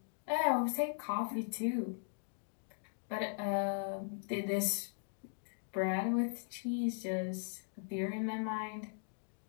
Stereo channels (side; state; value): right; silent; digital silence